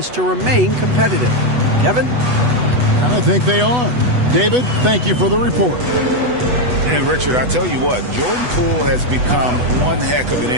to remain competitive. Kevin? And I think they are. David, thank you for the report. And Richard, I tell you what, Jordan Poole has become one heck of an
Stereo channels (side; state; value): left; late; 8.1 ms